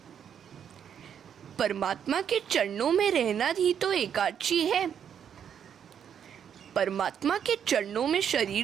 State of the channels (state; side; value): quieter; left; 8.4 dB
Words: परमात्मा के चरणों में रहना ही तो एकादशी है। परमात्मा के चरणों में